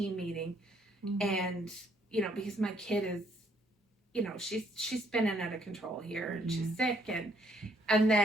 meeting. And, you know, because my kid is, you know, she's spinning out of control here, and she's sick, and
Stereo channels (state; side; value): normal; both; correlation 0.68